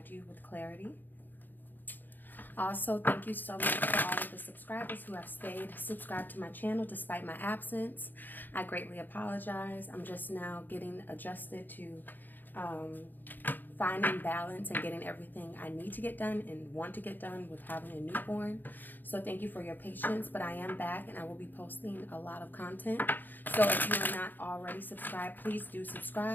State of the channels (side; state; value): right; late; 0.088 ms